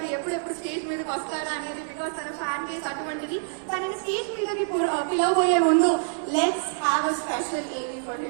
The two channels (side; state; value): left; silent; digital silence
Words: ఎప్పుడెప్పుడు స్టేజ్ మీదకి వస్తారా అనేది, బికాస్ తన ఫ్యాన్ బేస్ అటువంటిది. తనని స్టేజ్ మీదకి పిలవబోయే ముందు let's have a special AV for